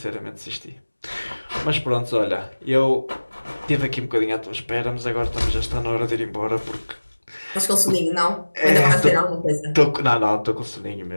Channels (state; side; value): inverted; both; correlation -1.00